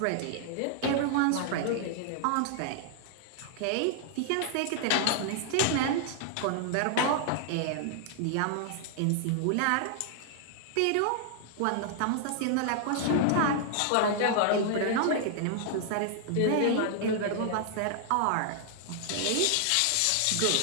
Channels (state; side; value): different; both; correlation 0.00